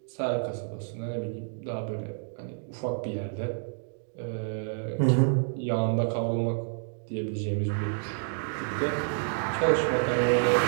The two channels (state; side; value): silent; left; 59 dB below the other